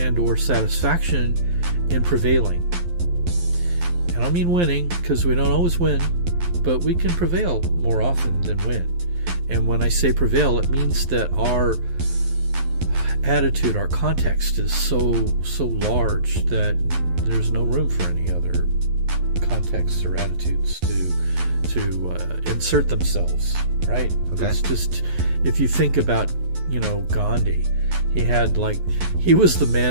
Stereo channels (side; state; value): left; late; 11 ms